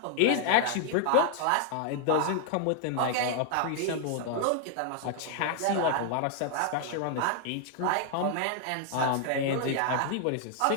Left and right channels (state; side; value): different; both; correlation 0.00